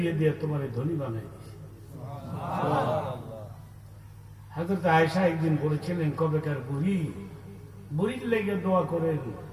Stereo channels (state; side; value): identical; both; correlation 1.00